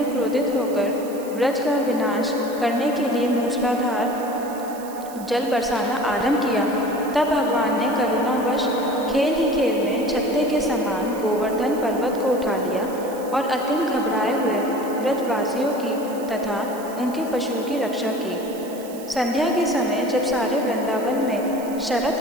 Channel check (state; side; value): noise; right; hiss, 18 dB below the sound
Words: क्रोधित होकर ब्रज का विनाश करने के लिए मूसलाधार जल बरसाना आरंभ किया, तब भगवान ने करुणावश खेल ही खेल में छत्ते के समान गोवर्धन पर्वत को उठा लिया और अत्यंत घबराए हुए ब्रजवासियों की तथा उनके पशुओं की रक्षा की। संध्या के समय जब सारे वृंदावन में शरद